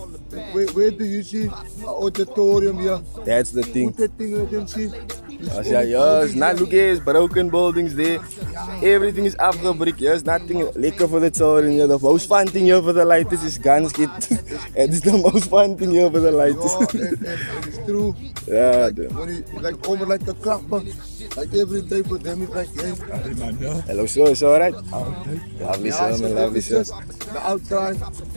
Where do you see an auditorium here? That's the thing. Put that thing, let them see. Yeah, yes, not look at broken buildings there. Everything is afgebrick. There's nothing lekker for the children here. The most fun thing here for the lighters is guns get. It's the most fun thing here for the lighters. It's true. Yeah. When you like over like a clapper, like every day for them it's like, hey. Hello, sir. It's alright. Lovely, sir, man. Lovely, sir. The outside,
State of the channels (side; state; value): both; inverted; correlation -1.00